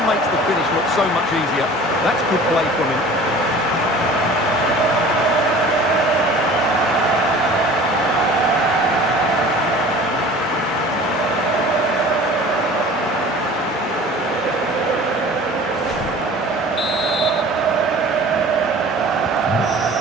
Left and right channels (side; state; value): both; normal; correlation 0.44